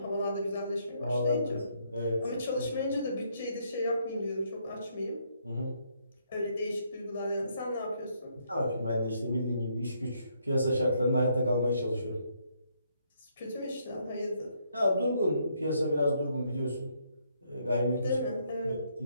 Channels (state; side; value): inverted; both; correlation -0.72